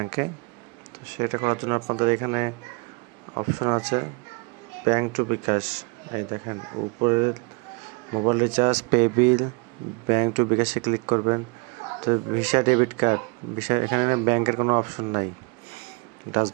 তো সেটা করার জন্য আপনাদের এখানে অপশন আছে ব্যাংক টু বিকাশ। এই দেখেন উপরে mobile recharge, pay bill, bank to বিকাশে ক্লিক করবেন। তো ভিসা, ডেবিট কার্ড, ভিসা এখানে ব্যাংকের কোনো অপশন নাই, ডাচ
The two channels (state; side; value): quieter; left; 30.4 dB